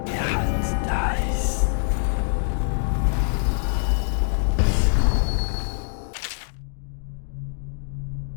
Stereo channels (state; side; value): silent; right; digital silence